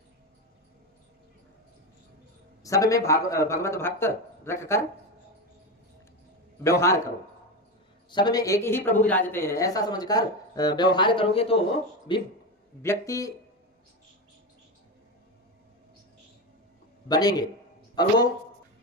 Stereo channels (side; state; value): both; normal; correlation 0.17